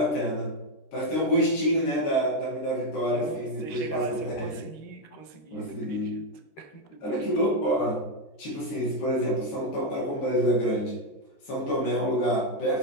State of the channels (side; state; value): right; late; 14 ms